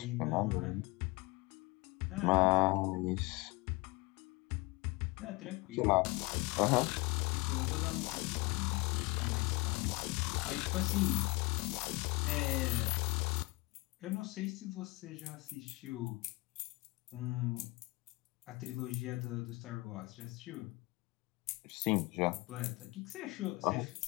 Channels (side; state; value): right; quieter; 24.1 dB